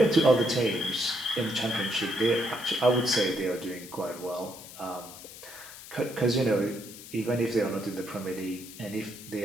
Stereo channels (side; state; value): left; noise; hiss, 15 dB below the sound